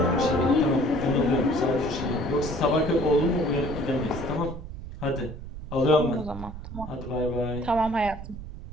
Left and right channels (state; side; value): noise; right; rumble, 11 dB below the sound